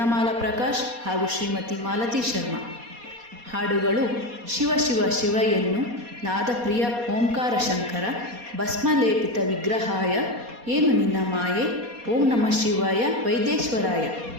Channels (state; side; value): late; left; 4.2 ms